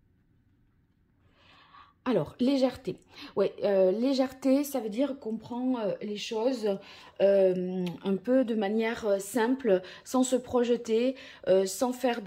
Alors, légèreté. Oui, légèreté, ça veut dire qu'on prend les choses un peu de manière simple, sans se projeter, sans faire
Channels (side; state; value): both; identical; correlation 1.00